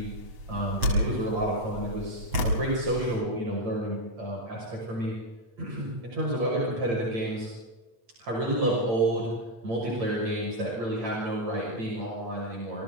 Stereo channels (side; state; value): left; late; 8.8 ms